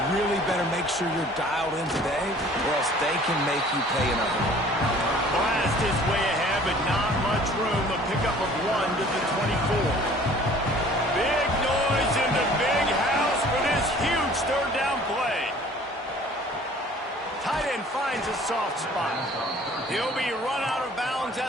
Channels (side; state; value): both; normal; correlation 0.51